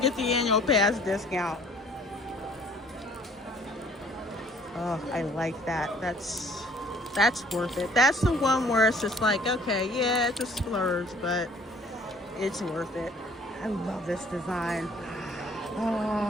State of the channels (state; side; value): normal; both; correlation 0.56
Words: get the annual pass discount. Oh, I like that. That's worth it. That's the one where it's just like, okay, yeah, it's a splurge, but it's worth it. I love this design.